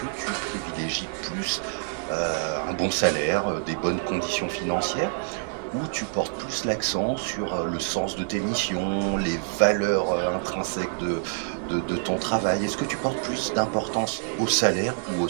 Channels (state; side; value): silent; left; 61 dB below the other